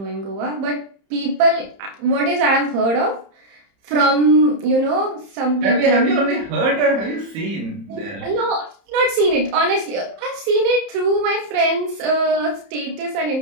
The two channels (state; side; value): late; left; 30 ms